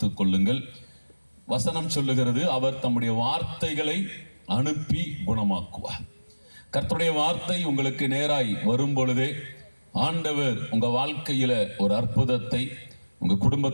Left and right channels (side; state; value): both; inverted; correlation -1.00